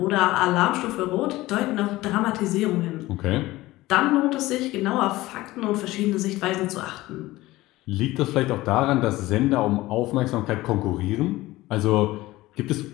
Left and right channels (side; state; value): right; quieter; 18.1 dB